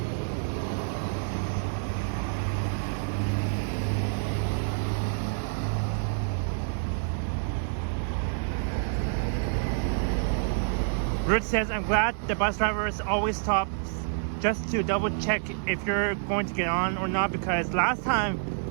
Ruth says, I'm glad the bus drivers always stops just to double check if you're going to get on or not, because last time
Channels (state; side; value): silent; left; digital silence